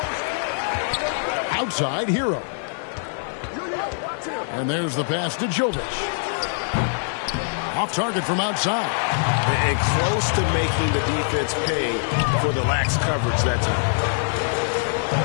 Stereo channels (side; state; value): right; silent; digital silence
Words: Outside, Hero. And there's the pass to Jovic. Off target from outside. And close to making the defense pay for the lax coverage that time.